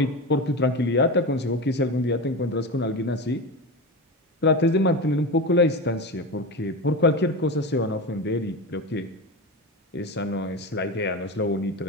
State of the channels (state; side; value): normal; both; correlation 0.22